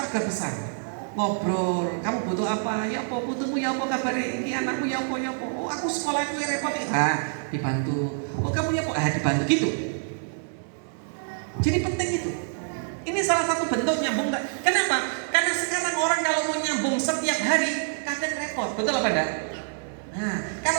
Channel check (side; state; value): left; silent; digital silence